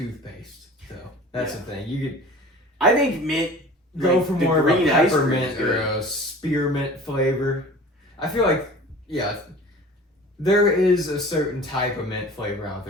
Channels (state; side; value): normal; both; correlation 0.42